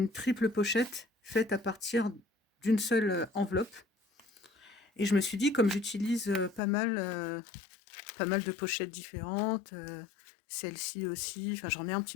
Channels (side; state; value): right; drops out; at 6.6 s